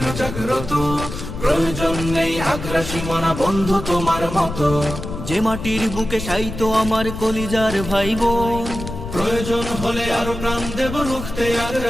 জাগ্রত, প্রয়োজন নেই আগ্রাসী মনা বন্ধু তোমার মতো। যে মাটির বুকে শায়িত আমার কলিজার ভাইবোন, প্রয়োজন হলে আরো প্রাণ দেব রুখতে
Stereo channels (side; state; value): left; noise; rumble, 8 dB below the sound